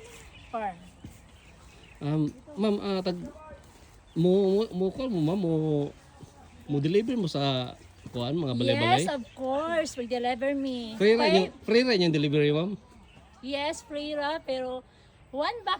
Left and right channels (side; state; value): both; identical; correlation 1.00